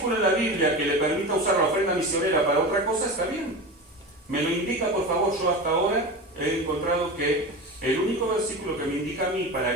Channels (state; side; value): normal; both; correlation 0.27